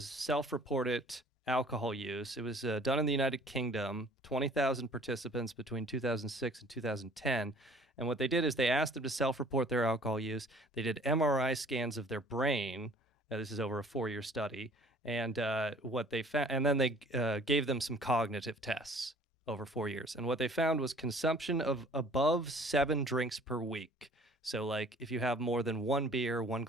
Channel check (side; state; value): both; normal; correlation 0.52